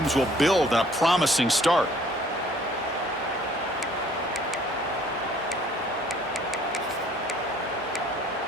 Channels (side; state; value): both; normal; correlation 0.57